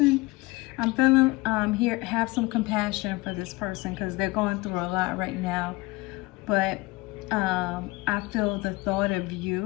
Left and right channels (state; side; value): quieter; right; 22.2 dB